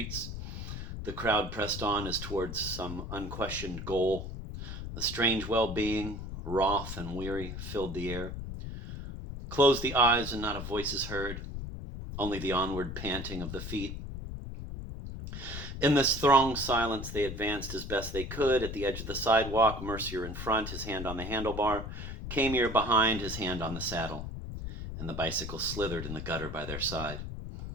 the crowd pressed on as towards some unquestioned goal. A strange well-being, wroth and weary, filled the air. Closed the eyes and not a voice is heard, only the onward panting of the feet. In this thronged silence, they advanced as best they could. At the edge of the sidewalk, Mercier in front, his hand on the handlebar, Camier behind, his hand on the saddle, and the bicycle slithered in the gutter by their side.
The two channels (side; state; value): left; noise; rumble, 7 dB below the sound